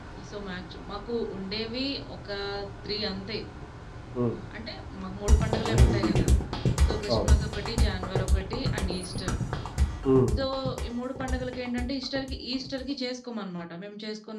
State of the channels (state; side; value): identical; both; correlation 1.00